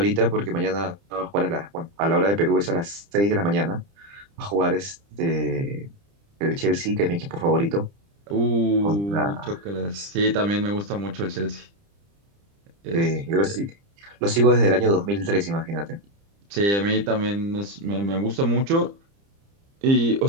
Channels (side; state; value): left; late; 30 ms